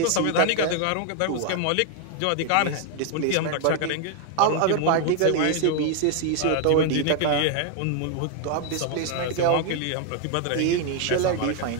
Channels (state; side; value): different; both; correlation 0.00